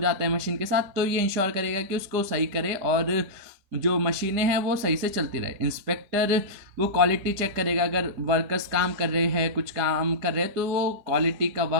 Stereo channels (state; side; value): late; left; 5.0 ms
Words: है मशीन के साथ, तो ये इंश्योर करेगा कि उसको सही करे और जो मशीनें हैं वो सही से चलती रहे। इंस्पेक्टर, वो क्वालिटी चेक करेगा, अगर वर्कर्स काम कर रहे हैं, कुछ काम कर रहे हैं, तो वो क्वालिटी का